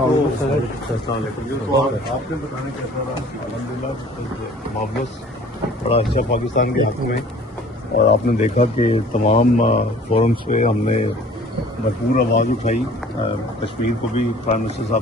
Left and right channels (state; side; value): normal; both; correlation 0.50